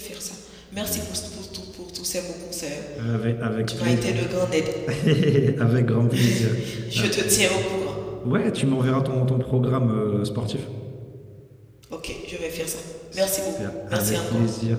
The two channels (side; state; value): both; identical; correlation 1.00